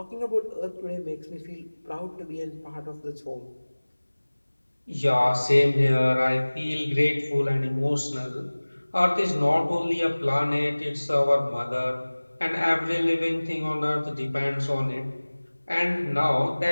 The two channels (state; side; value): inverted; both; correlation -1.00